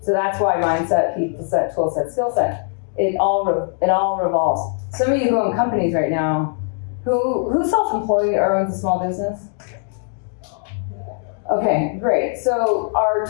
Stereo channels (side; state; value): right; silent; 56 dB below the other